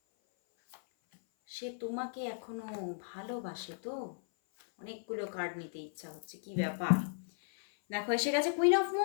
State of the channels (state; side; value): silent; right; 54 dB below the other